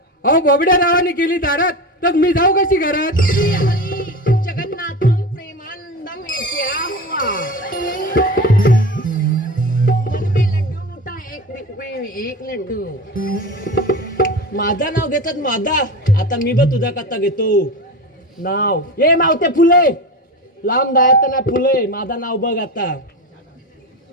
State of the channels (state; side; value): normal; both; correlation 0.26